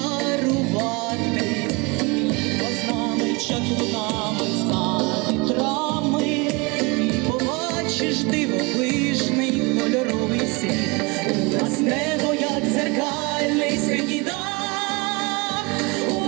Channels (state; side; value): quieter; left; 27.1 dB